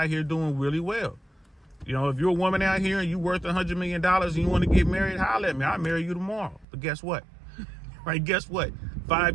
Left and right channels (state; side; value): drops out; left; at 6.7 s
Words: here doing really well. You know, if you're a woman out here and you're worth $100 million and you want to get married, holler at me. I'll marry you tomorrow. But guess what? Right? Guess what?